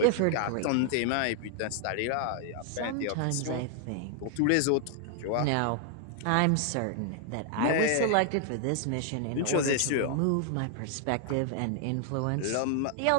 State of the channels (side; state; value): both; different; correlation 0.00